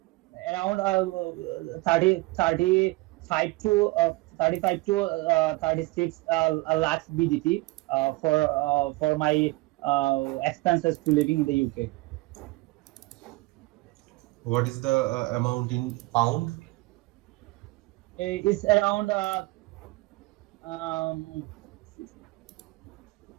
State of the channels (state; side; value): quieter; left; 22.3 dB